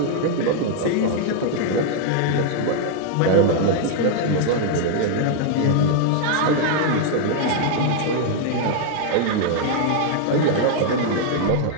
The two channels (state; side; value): different; both; correlation 0.00